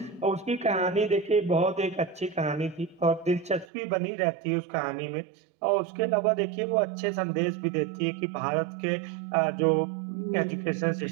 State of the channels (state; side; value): drops out; left; at 3.7 s